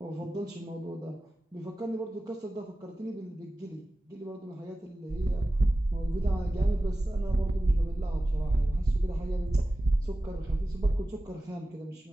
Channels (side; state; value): both; normal; correlation 0.96